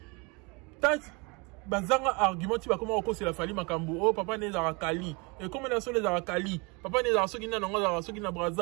ta bazanga argument ti ba comment ko c'est la fali makambo oh papa ne za kali et comme na so les za kali papa ne za soki na ngo za soki na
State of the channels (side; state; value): left; quieter; 29.1 dB